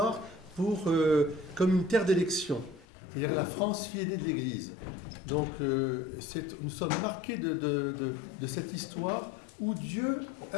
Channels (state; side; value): drops out; right; at 2.9 s